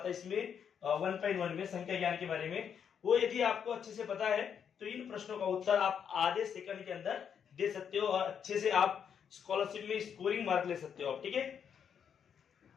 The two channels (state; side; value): quieter; right; 7.8 dB